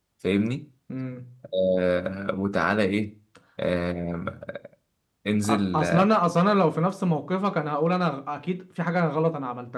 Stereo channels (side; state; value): both; identical; correlation 1.00